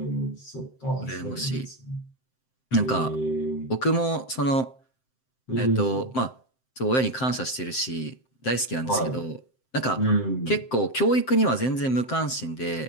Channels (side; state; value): right; late; 7.7 ms